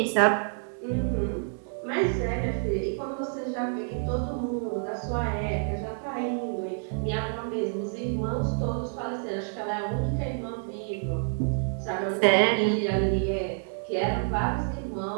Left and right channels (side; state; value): left; silent; 59 dB below the other